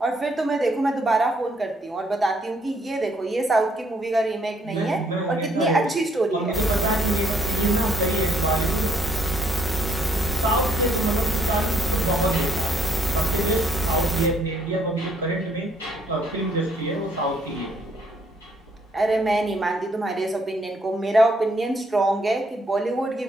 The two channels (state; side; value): normal; both; correlation 0.68